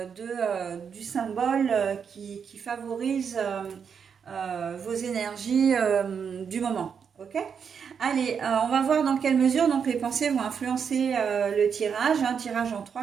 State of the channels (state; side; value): quieter; left; 6.8 dB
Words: du symbole qui favorise vos énergies du moment. Ok. Allez, on va voir dans quelle mesure donc les pensées vont influencer le tirage. Un tirage en